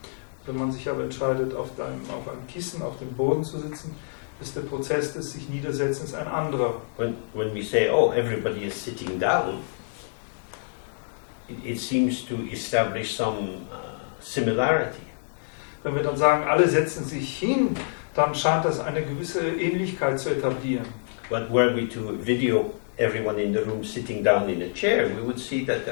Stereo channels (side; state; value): right; silent; 60 dB below the other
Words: Wenn man sich aber entscheidet, auf einem Kissen, auf dem Boden zu sitzen, ist der Prozess des sich Niedersetzens ein anderer. When we say, oh, everybody is sitting down, it seems to establish some similarity. Wenn wir dann sagen, alle setzen sich hin, dann scheint das eine gewisse Ähnlichkeit zu etablieren. But were we to video everyone in the room sitting down in a chair, we would see that